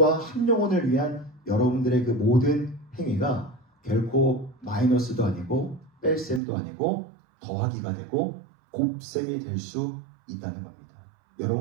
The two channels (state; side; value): drops out; left; at 6.4 s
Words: 한 영혼을 위한 여러분들의 그 모든 행위가 결코 마이너스도 아니고 뺄셈도 아니고 더하기가 되고 곱셈이 될 수 있다는 겁니다.